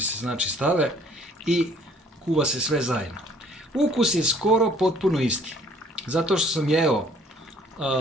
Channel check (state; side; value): normal; both; correlation 0.57